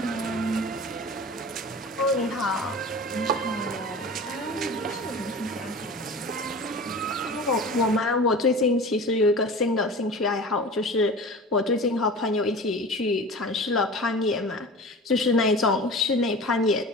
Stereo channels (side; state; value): both; normal; correlation 0.36